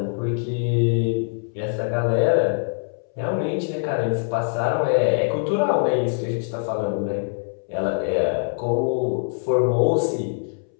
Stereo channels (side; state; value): right; silent; 63 dB below the other